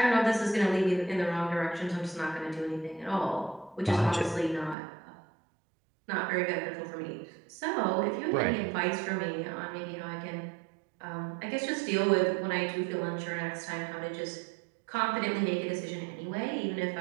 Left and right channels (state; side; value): drops out; left; at 4.8 s